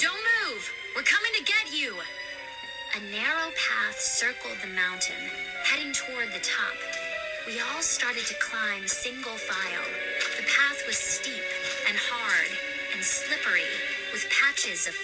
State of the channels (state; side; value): identical; both; correlation 1.00